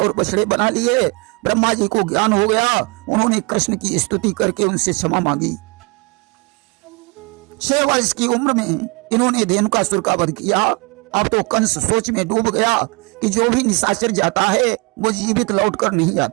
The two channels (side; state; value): left; quieter; 28.3 dB